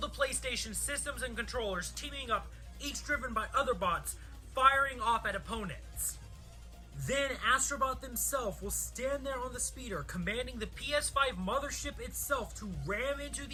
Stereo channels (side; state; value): both; identical; correlation 1.00